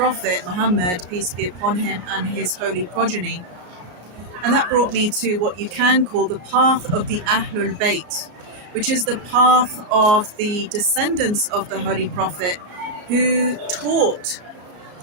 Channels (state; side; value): late; left; 34 ms